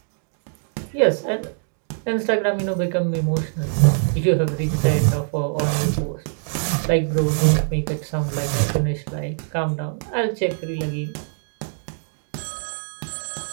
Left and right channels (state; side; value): silent; left; digital silence